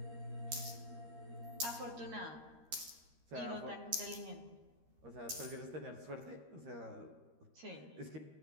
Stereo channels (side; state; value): left; late; 13 ms